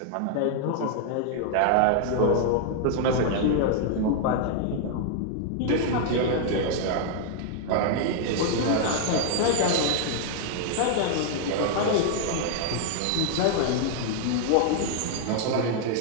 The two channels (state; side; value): different; both; correlation 0.00